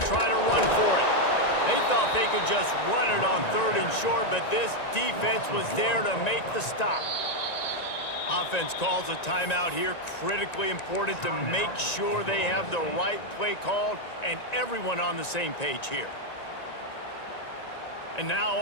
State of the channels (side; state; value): right; late; 1.9 ms